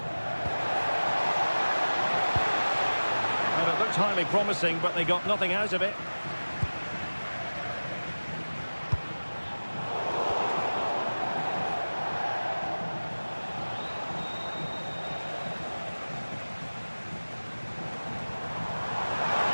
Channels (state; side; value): inverted; both; correlation -1.00